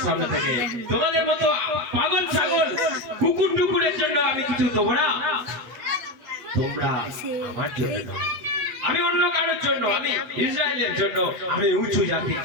সামনে থেকে। তোমাদের মতো পাগল ছাগল কুকুর টুকুরের জন্য আমি কিছু দেবো না। তোমরা আমার জন্য নয়, আমি অন্য কারোর জন্য, আমি ইসরায়েলের জন্য, আমি উঁচু জাতির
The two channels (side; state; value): left; late; 8.1 ms